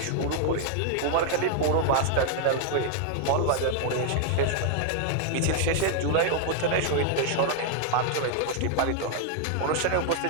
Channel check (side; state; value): both; different; correlation 0.00